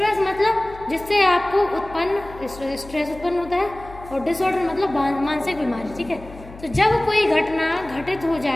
मतलब जिससे आपको स्ट्रेस उत्पन्न होता है, और डिसऑर्डर मतलब मानसिक बीमारी, ठीक है। तो जब कोई घटना घटित हो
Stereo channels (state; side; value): noise; left; hum, 17 dB below the sound